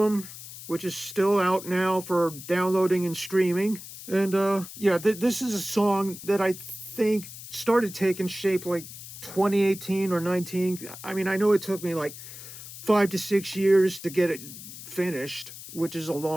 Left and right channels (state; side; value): noise; left; hiss, 13 dB below the sound